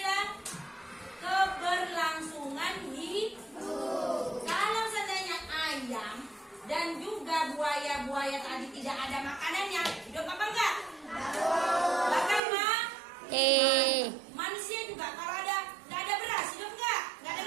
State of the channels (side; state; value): left; drops out; at 12.4 s